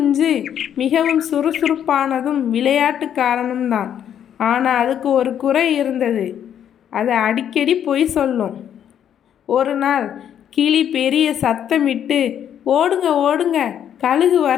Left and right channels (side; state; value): right; quieter; 9.5 dB